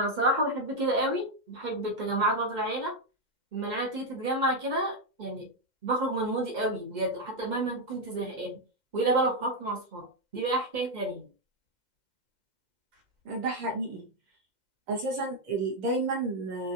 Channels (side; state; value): left; late; 2.1 ms